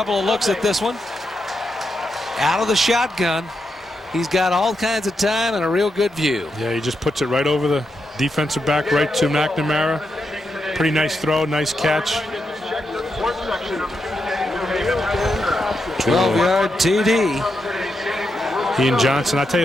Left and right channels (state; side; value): normal; both; correlation 0.84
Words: of looks at this one. Out of the shotgun. He's got all kinds of time and a real good view. Yeah, he just puts it right over the defensive back, right to McNamara. Pretty nice throw, nice catch. 12-yard TD. Ian Johnson, I tell